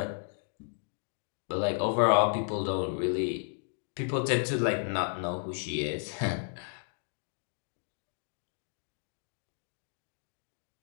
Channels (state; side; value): silent; right; digital silence